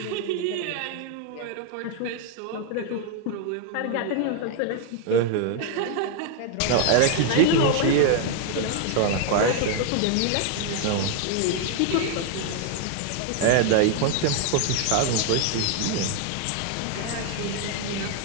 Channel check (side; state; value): both; different; correlation 0.00